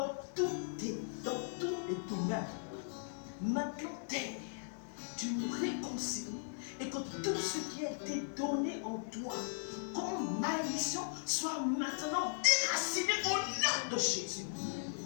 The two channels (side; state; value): right; silent; 52 dB below the other